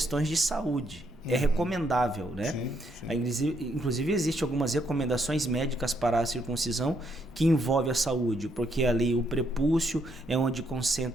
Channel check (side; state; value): both; normal; correlation 0.74